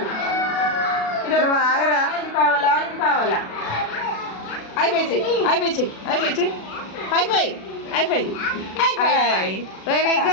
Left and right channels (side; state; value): right; late; 36 ms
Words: నువ్వు ఆగరా. ఇది కావాలా? ఇది కావాలా? అయిపోయి చెయ్యి అయిపోయి చెయ్యి అయిపోయి చెయ్యి. High five high five high five. Very